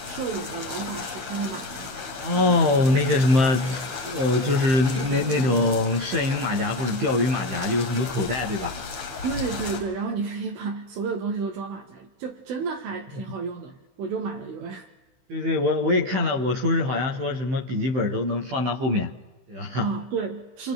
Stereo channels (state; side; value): late; left; 16 ms